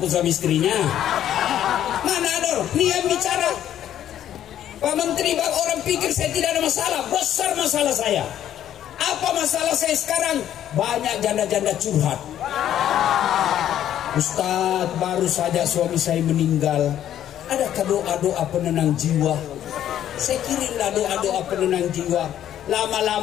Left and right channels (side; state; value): right; quieter; 11.1 dB